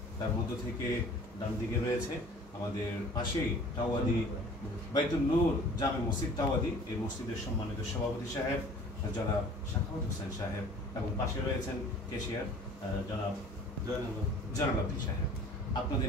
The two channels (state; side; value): normal; both; correlation 0.48